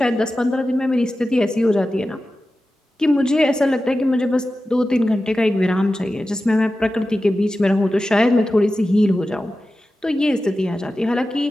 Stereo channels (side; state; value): both; normal; correlation 0.93